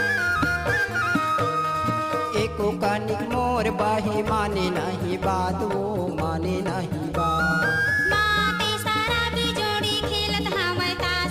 एको कानिक मोर बाही माने नहीं बात, वो माने नहीं बात। माते सारा भी जोड़ी खेलत हमें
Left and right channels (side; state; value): both; identical; correlation 1.00